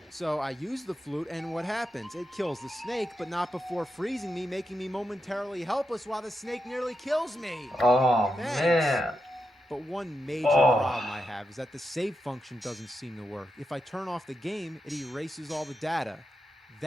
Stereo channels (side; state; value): both; normal; correlation 0.87